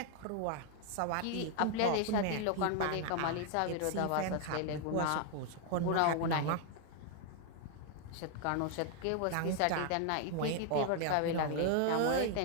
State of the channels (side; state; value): both; different; correlation 0.00